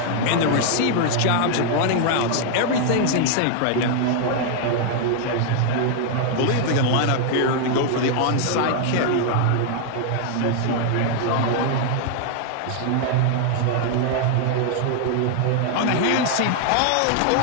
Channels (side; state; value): both; different; correlation 0.00